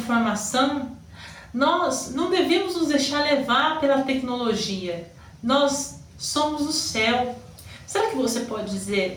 nós não devemos nos deixar levar pela tecnologia. Nós somos do céu. Será que você pode dizer,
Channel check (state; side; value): identical; both; correlation 1.00